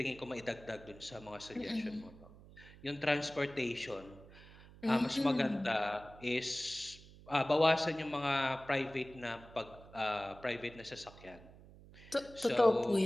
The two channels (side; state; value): right; noise; hum, 20 dB below the sound